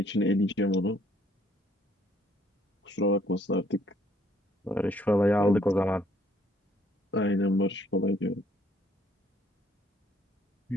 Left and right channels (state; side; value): normal; both; correlation 0.65